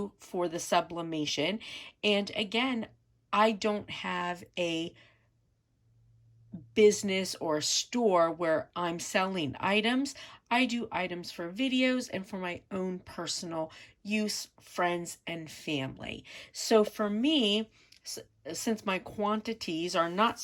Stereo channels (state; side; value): identical; both; correlation 1.00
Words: for the sublimation. And again, I don't have a business or a store where I'm selling items. I do items for videos and for my own personal use, friends and family. So for me, since my quantities are not